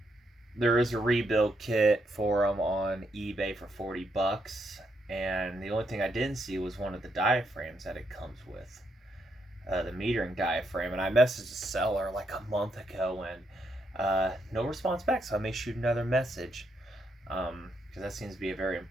there is a rebuild kit for them on eBay for 40 bucks. And the only thing I didn't see was one of the diaphragms that it comes with, the metering diaphragm. And I messaged the seller like a month ago, and no response back. So I may shoot another message, because that seems to be a very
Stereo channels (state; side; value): normal; both; correlation 0.78